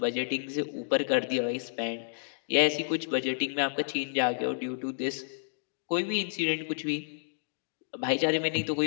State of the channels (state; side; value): silent; right; digital silence